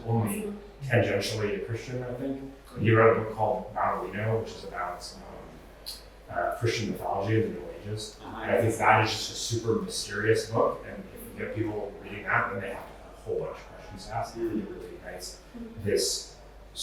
only tangentially a Christian, I think. He wrote a book called Baudolino, which is about Christian mythology in the Middle Ages. And I think that is just a super mysterious book, and if you get people reading that, then they have a whole bunch of questions to ask. It really ignites this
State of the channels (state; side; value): identical; both; correlation 1.00